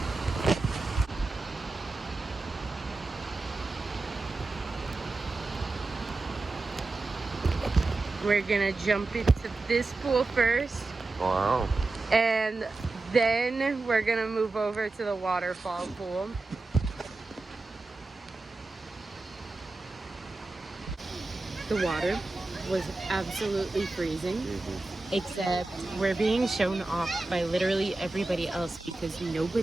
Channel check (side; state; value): left; quieter; 3.3 dB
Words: We're gonna jump into this pool first. Wow. And then we're gonna move over to the waterfall pool. The water was absolutely freezing, except we're being shown off by literally everybody else because